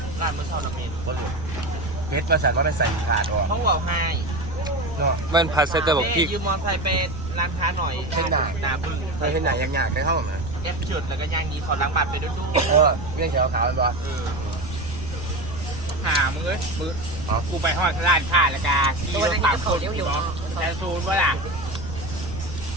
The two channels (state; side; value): noise; right; rumble, 9 dB below the sound